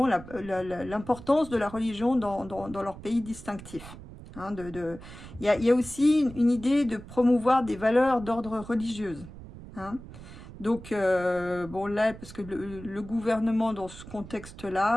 l'importance de la religion dans leur pays distinctif. Hein, il y a aussi une idée de promouvoir des valeurs d'ordre religieuse. Hein. Donc, bon là, parce que le gouvernement dans ce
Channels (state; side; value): noise; right; rumble, 15 dB below the sound